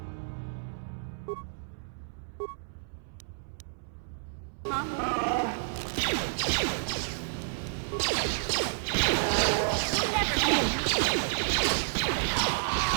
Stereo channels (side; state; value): left; silent; 58 dB below the other